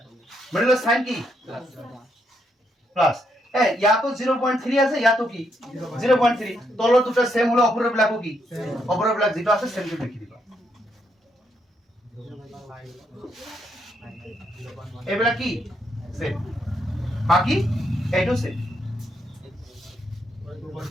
মানে সাইন কি প্লাস ইয়া তো 0.3 আছে ইয়া তো কি 0.3 তলৰ দুটা সেম হলো অপৰৰ বিলাকো কি অপৰৰ বিলাক যেটা আছে সেম কে লিখি দিবা এইবিলাক কি সেম বাকি এইটো সেম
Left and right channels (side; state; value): both; normal; correlation 0.77